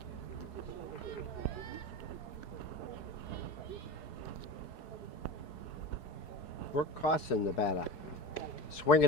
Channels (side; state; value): right; late; 4.7 ms